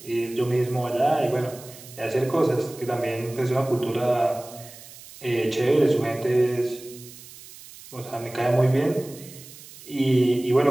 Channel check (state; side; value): noise; right; hiss, 18 dB below the sound